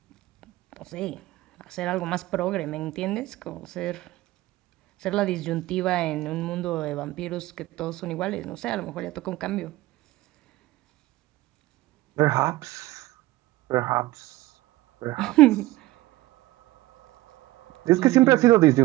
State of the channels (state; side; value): quieter; left; 17.9 dB